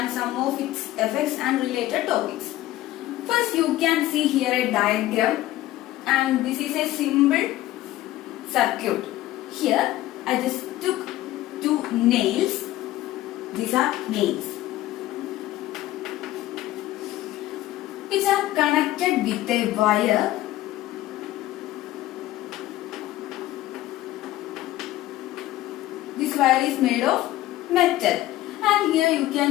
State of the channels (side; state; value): right; quieter; 15.4 dB